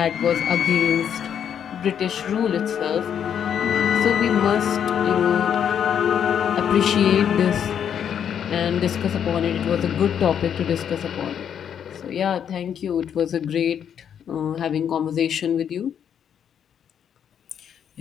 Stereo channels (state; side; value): quieter; right; 8.6 dB